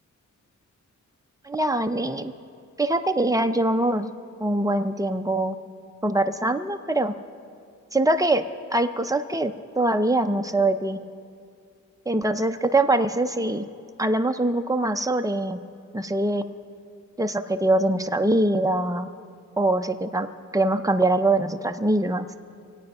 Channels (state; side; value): normal; both; correlation 0.66